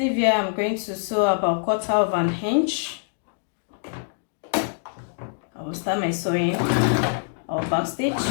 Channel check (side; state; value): right; silent; digital silence